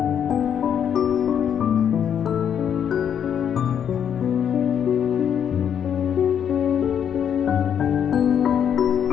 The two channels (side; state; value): right; quieter; 8.6 dB